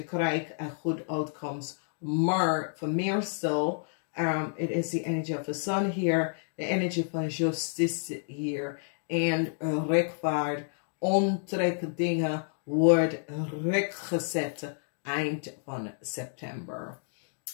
krijgt een goed uitkomst. Maar voor meestal, it is the energy of the sun here, the energy van justice hier. En rechtvaard, ontrek dingen wordt rechtgezet eind van september.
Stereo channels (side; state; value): right; silent; digital silence